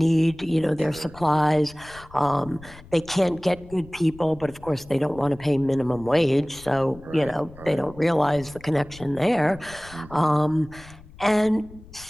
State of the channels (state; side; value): noise; left; rumble, 20 dB below the sound